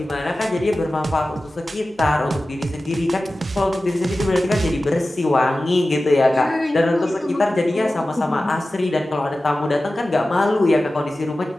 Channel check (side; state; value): both; normal; correlation 0.95